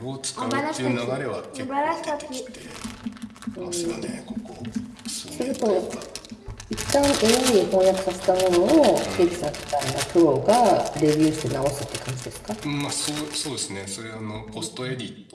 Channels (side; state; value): both; identical; correlation 1.00